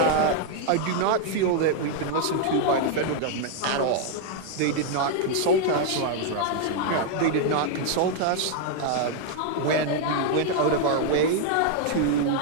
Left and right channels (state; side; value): different; both; correlation 0.00